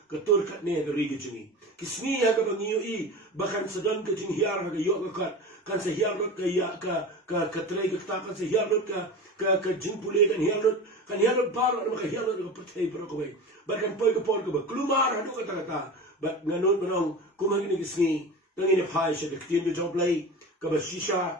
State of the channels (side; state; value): both; normal; correlation 0.30